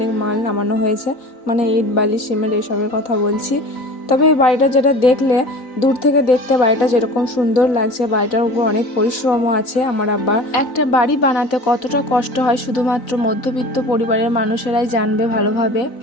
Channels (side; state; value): right; late; 4.0 ms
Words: মাল নামানো হয়েছে, মানে ইট বালি সিমেন্ট এইসবের কথা বলছি। তবে এই বাড়িটা যেটা দেখলে, দূর থেকে দেখতে বাড়িটা যেরকম সুন্দর লাগছে, বাড়িটার উপর অনেক পরিশ্রমও আছে আমার আব্বার। একটা বাড়ি বানাতে কতটা কষ্ট হয় শুধুমাত্র মধ্যবিত্ত পরিবারের মানুষেরাই জানবে ভালোভাবে।